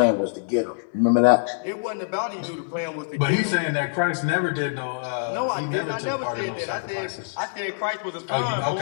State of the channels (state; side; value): silent; right; digital silence